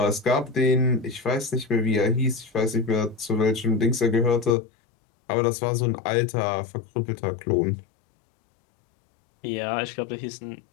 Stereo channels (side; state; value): right; drops out; at 4.5 s